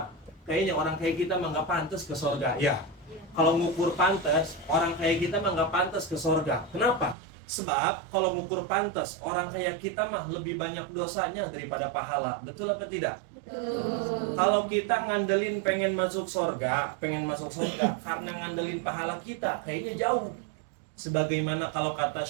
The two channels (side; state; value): left; drops out; at 7.2 s